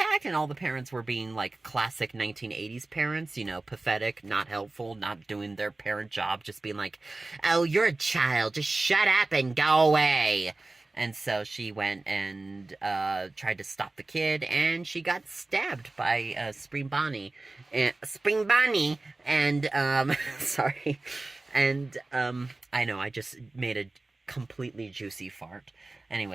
And all the parents were being like classic 1980s parents, you know, pathetic, not helpful, not doing their parent job, just being like, "Oh, you're a child. Just shut up and go away." And so she went and tried to stop the kid, and she got stabbed by Spring Bonnie. And, sorry. And, I know, I just made a completely juicy fart.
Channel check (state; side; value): quieter; left; 3.2 dB